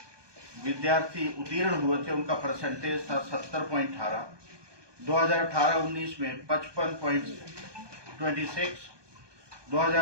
विद्यार्थी उत्तीर्ण हुए थे उनका परसेंटेज था 70.18, 2018-19 में 55.26,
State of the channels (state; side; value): late; left; 1.2 ms